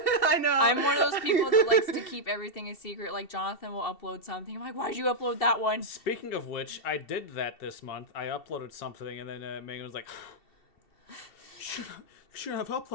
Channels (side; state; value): right; late; 2.7 ms